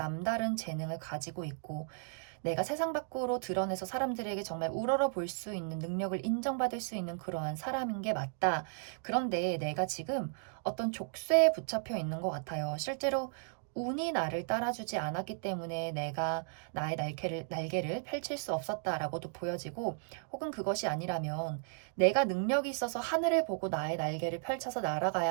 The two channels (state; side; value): silent; left; digital silence